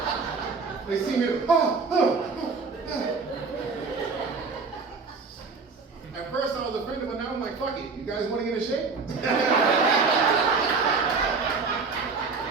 They see me, At first I was offended, but now I'm like, fuck it. You guys want to get in shape?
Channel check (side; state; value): left; quieter; 4.6 dB